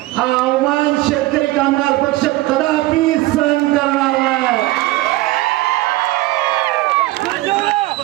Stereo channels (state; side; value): quieter; left; 18.6 dB